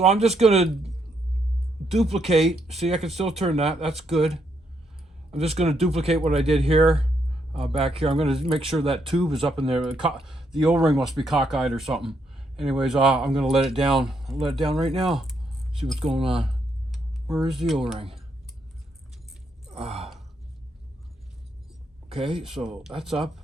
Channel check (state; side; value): normal; both; correlation 0.76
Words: I'm just gonna duplicate. See, I can still turn that. That's good. I'm just gonna duplicate what I did here, back here. I'm gonna make sure that tube is up in there. The O-ring must be cockeyed or something. Anyways, I'm gonna let it down. I'll let it down right now. See what's going on. Where is the O-ring? Okay, so that's up.